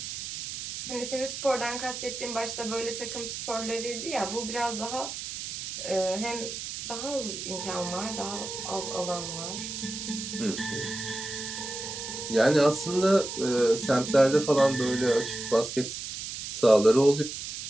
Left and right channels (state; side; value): noise; right; hiss, 7 dB below the sound